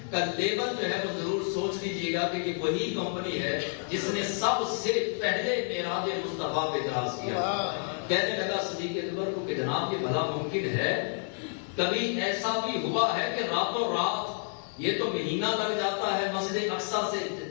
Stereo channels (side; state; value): right; silent; digital silence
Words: کا لیبل جو ہے وہ ضرور سوچ لیجئے گا کہ یہ وہی کمپنی ہے جس نے سب سے پہلے معراج مصطفیٰ پہ اعتراض کیا۔ کہنے لگا صدیق اکبر کو کہ جناب یہ بھلا ممکن ہے؟ کبھی ایسا بھی ہوا ہے کہ راتوں رات یہ تو مہینہ لگ جاتا ہے مسجد اقصیٰ سے